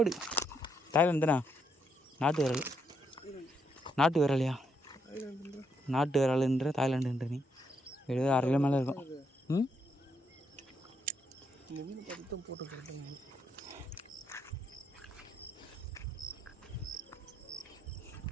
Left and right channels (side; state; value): both; normal; correlation 0.76